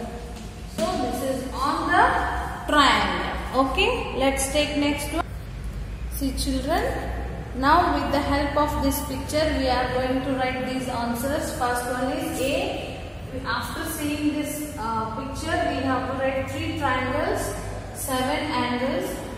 So this is on the triangle. Okay, let's take next one. See children, now with the help of this picture we are going to write these answers. First one is A. After seeing this picture, we have to write 3 triangles, 7 angles,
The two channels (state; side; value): identical; both; correlation 1.00